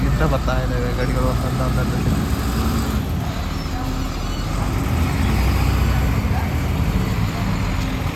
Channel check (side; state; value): both; identical; correlation 1.00